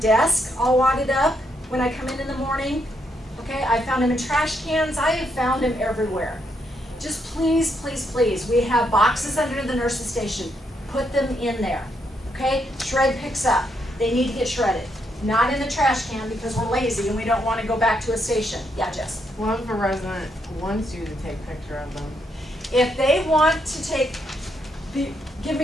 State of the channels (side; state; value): both; normal; correlation 0.77